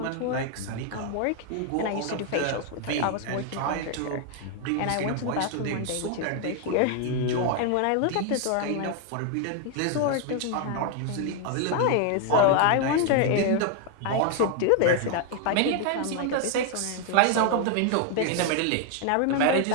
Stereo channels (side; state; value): both; different; correlation 0.00